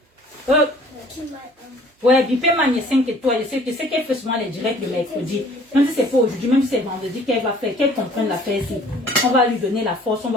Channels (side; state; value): both; normal; correlation 0.53